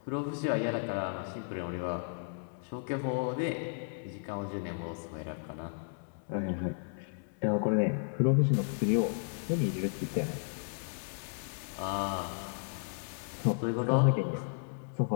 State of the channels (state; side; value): silent; right; 55 dB below the other